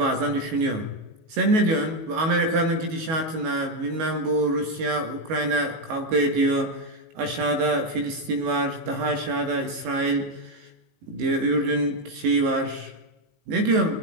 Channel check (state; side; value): late; left; 19 ms